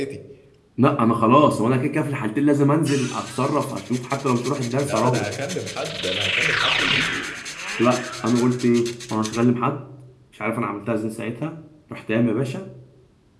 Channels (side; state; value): both; identical; correlation 1.00